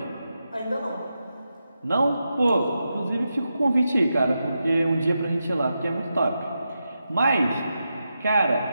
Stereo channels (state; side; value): inverted; both; correlation -0.88